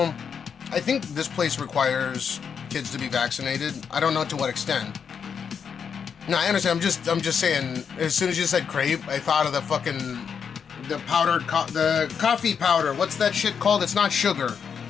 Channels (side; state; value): right; quieter; 6.9 dB